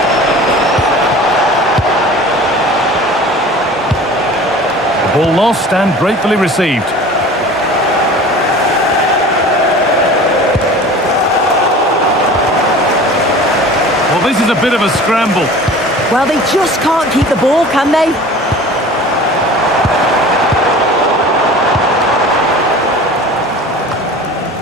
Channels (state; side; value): normal; both; correlation 0.41